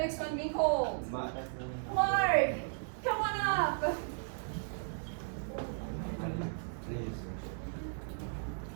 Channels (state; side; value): silent; left; 54 dB below the other